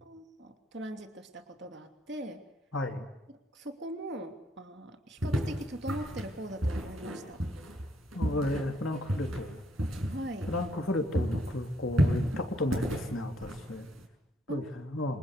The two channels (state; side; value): normal; both; correlation 0.71